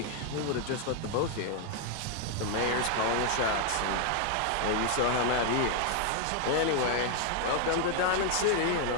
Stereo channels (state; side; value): different; both; correlation 0.00